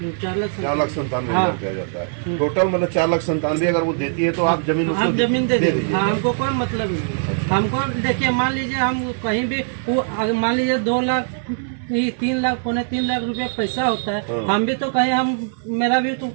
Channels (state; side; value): silent; left; 62 dB below the other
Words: 4,97,000 रुपया जाता है टोटल, मतलब 4,97,000 अगर वो देती है तो आप जमीन उसको जमीन दे दीजिए। दीजिए। हमको कोई मतलब नहीं। हमको देखिए मान लीजिए हम कहीं भी वो मान लीजिए 2 लाख ये 3 लाख 3.25 लाख रुपए पैसा होता है। हम भी तो कहीं हम मेरा भी तो